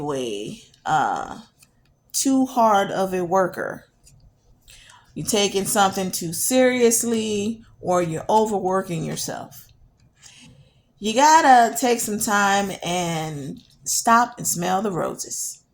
too hard of a worker, you're taking something too seriously, or you're overworking yourself, you gotta take some time and stop and smell the roses,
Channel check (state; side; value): identical; both; correlation 1.00